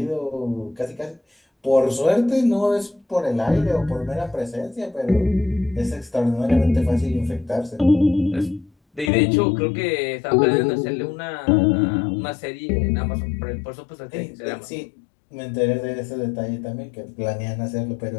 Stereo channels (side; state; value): right; drops out; at 9.1 s